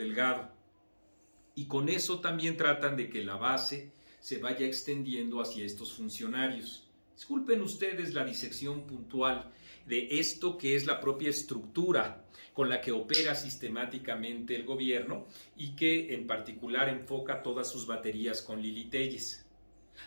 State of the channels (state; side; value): inverted; both; correlation -1.00